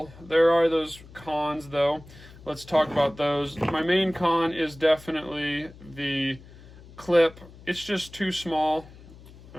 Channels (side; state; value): left; noise; hum, 20 dB below the sound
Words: There are those cons, though. Let's talk about those. My main con is definitely the clip. It's just too small.